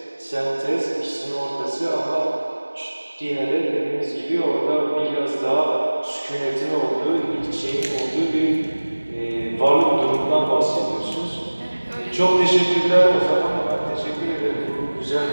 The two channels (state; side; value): inverted; both; correlation -1.00